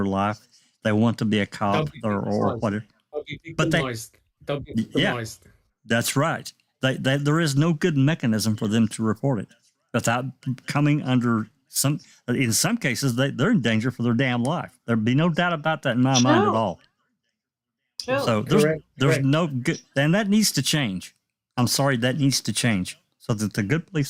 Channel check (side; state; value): both; identical; correlation 1.00